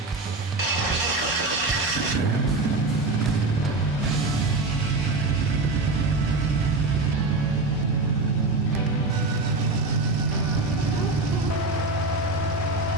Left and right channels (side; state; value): left; quieter; 3.2 dB